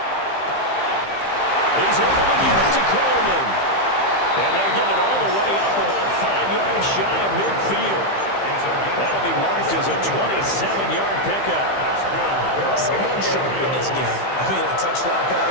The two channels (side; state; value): right; late; 15 ms